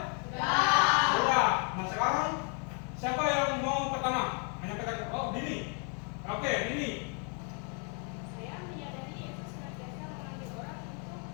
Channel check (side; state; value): right; quieter; 38.3 dB